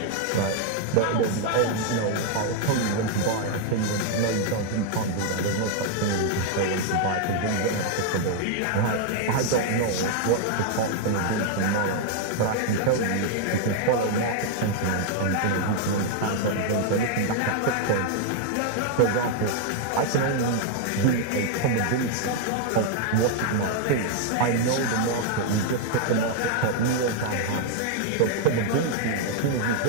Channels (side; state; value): both; different; correlation 0.00